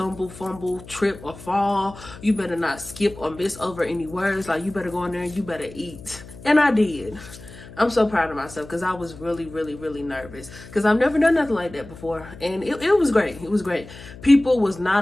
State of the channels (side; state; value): left; noise; hum, 17 dB below the sound